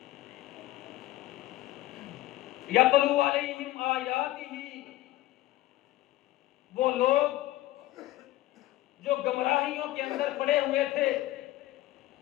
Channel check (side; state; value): right; quieter; 16.1 dB